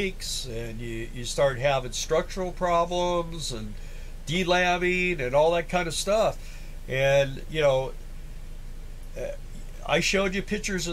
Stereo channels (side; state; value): both; identical; correlation 1.00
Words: and you start having structural problems and delabbing and all that kind of stuff. And I showed you pictures